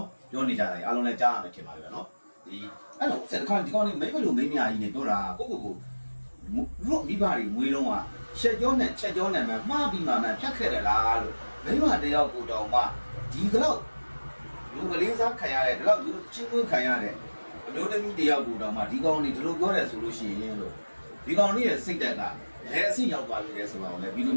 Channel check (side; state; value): both; inverted; correlation -1.00